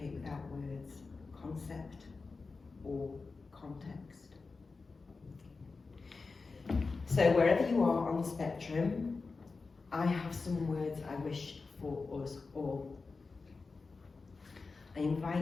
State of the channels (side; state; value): right; quieter; 4.2 dB